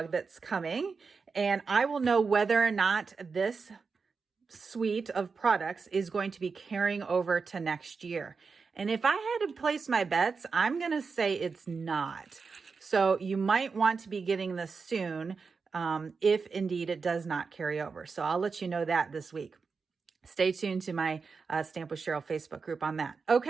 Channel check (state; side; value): quieter; left; 5.0 dB